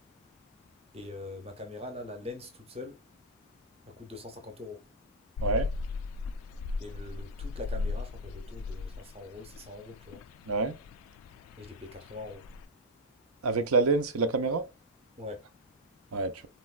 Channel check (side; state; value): both; normal; correlation -0.02